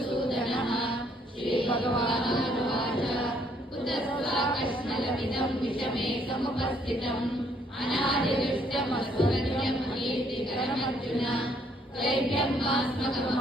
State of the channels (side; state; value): both; normal; correlation 0.67